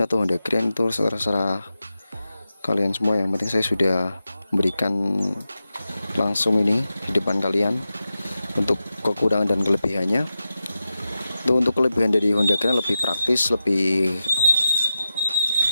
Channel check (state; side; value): inverted; both; correlation -0.91